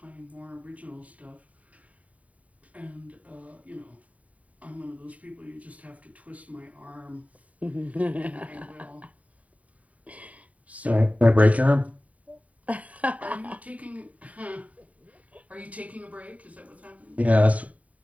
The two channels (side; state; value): left; late; 0.069 ms